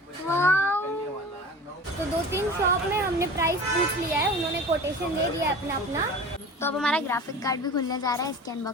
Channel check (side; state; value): both; normal; correlation 0.38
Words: तो 2-3 शॉप में हमने प्राइस पूछ लिया है, उन्होंने कोटेशन दे दिया अपना अपना। तो अब हमारा ग्राफिक कार्ड भी खुलने जा रहा है, इसकी